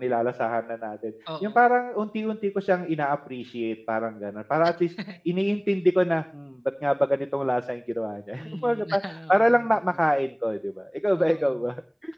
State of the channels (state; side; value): identical; both; correlation 1.00